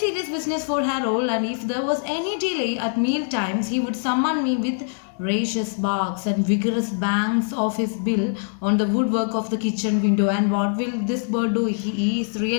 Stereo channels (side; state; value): right; silent; digital silence